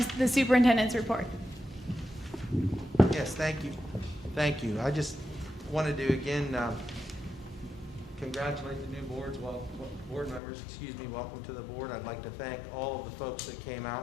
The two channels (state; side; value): drops out; right; at 10.4 s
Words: the superintendent's report. Yes, thank you. Thank you. I just wanted to again congratulate the new board members. Welcome to the board. I'd like to thank all of the folks that came